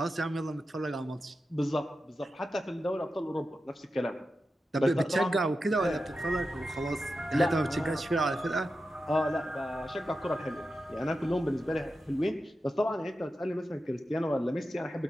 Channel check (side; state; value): both; normal; correlation 0.91